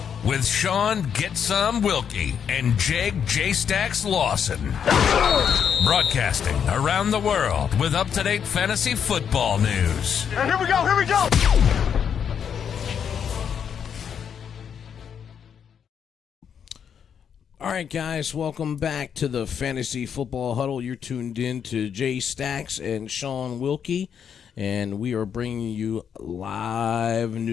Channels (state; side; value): quieter; right; 7.8 dB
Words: with Shaun Get Some Wilkie and Jake J-Stacks Lawson. Broadcasting around the world with up-to-date fantasy football news. Here we go. All right, guys, welcome back to the Fantasy Football Huddle. You're tuned in to J-Stacks and Shaun Wilkie, and we are bringing you live